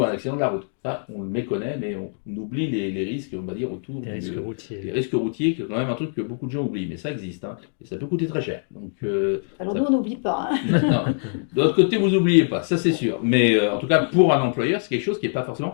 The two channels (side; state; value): right; silent; digital silence